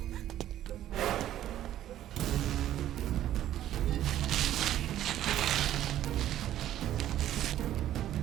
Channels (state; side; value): quieter; left; 12.4 dB